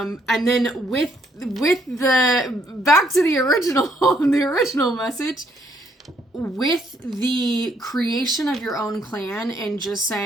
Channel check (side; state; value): both; normal; correlation 0.70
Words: then with the back to the original the original message, with the creation of your own clan and just